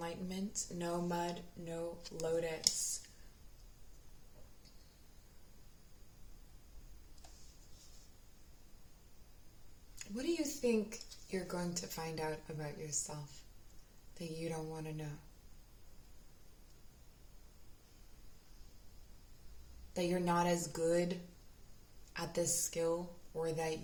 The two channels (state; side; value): identical; both; correlation 1.00